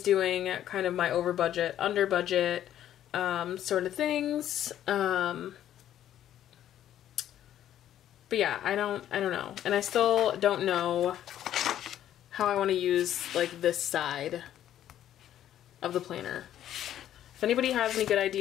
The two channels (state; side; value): quieter; right; 11.5 dB